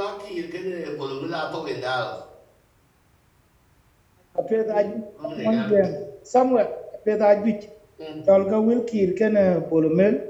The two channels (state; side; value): identical; both; correlation 1.00